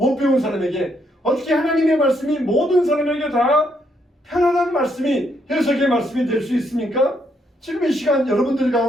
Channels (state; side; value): normal; both; correlation 0.74